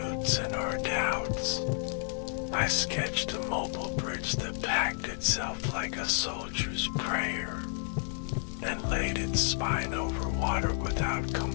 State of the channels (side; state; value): right; silent; 57 dB below the other